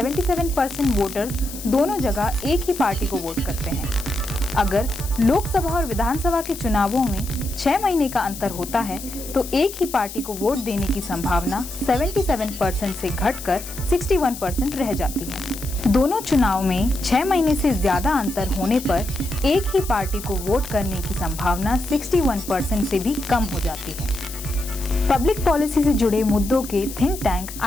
वोटर्स दोनों जगह एक ही पार्टी को वोट करते हैं। अगर लोकसभा और विधानसभा के चुनावों में 6 महीने का अंतर होता है तो एक ही पार्टी को वोट देने की संभावना 77% से घटकर 61% रह जाती है। दोनों चुनाव में 6 महीने से ज्यादा अंतर होने पर एक ही पार्टी को वोट करने की संभावना 61% से भी कम हो जाती है। पब्लिक पॉलिसी से जुड़े मुद्दों के थिंक टैंक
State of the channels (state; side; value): noise; left; hiss, 12 dB below the sound